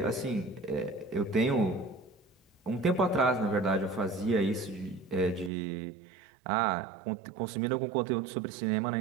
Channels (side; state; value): left; drops out; at 5.5 s